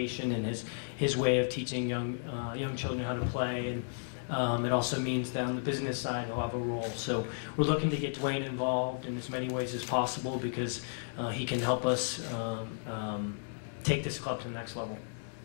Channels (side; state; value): right; silent; 55 dB below the other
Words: and his way of teaching young children how to play, and it also means that on the business side he'll have a role. So we're looking to get Dwayne involved in as many ways as possible, because he can help us take this club to the next level.